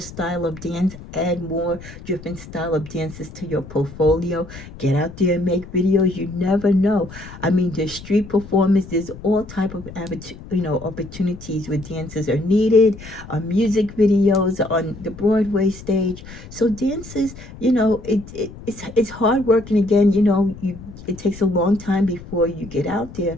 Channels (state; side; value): noise; left; rumble, 16 dB below the sound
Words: of dance, add more different style of dances to your portfolio. Get out there and make videos. You never know. I mean, there's street performance, there's all type of opportunities where dancers are needed, music videos on the Broadway stage. So dances, it's hard work, and again, it takes a long time before you get out there,